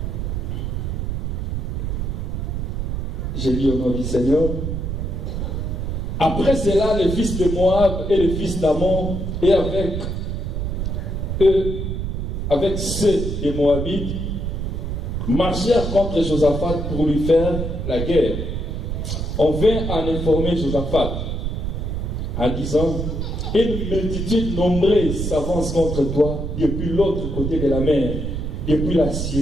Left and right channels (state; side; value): noise; right; rumble, 3 dB below the sound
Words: J'ai lu au nom du Seigneur. Après cela, les fils de Moab et les fils d'Ammon, et avec eux, avec ceux des Moabites, marchèrent contre Josaphat pour lui faire la guerre. On vint en informer Josaphat en disant: une multitude nombreuse s'avance contre toi depuis l'autre côté de la mer, depuis la